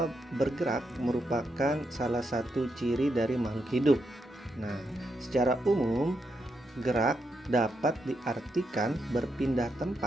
bergerak merupakan salah satu ciri dari makhluk hidup? Nah, secara umum, gerak dapat diartikan berpindah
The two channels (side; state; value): both; normal; correlation 0.82